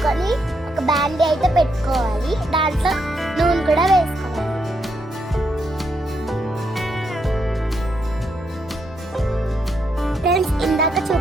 ఒక బాండీ అయితే పెట్టుకోవాలి. దాంట్లో నూనె కూడా వేసుకోవాలి. ఫ్రెండ్స్, ఇందాక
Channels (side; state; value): both; normal; correlation 0.79